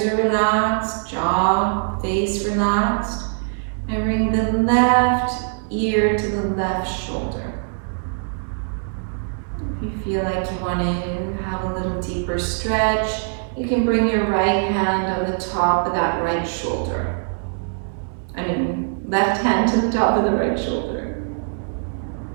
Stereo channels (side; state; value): left; silent; 64 dB below the other